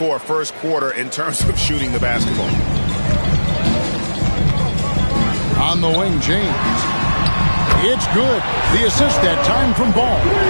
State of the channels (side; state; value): both; inverted; correlation -1.00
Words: a first quarter in terms of shooting the basketball. On the wing, James. It's good. The assist that time from Ball.